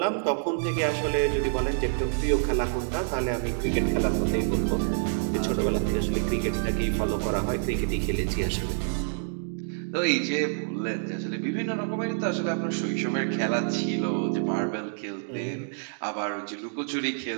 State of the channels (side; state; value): left; silent; digital silence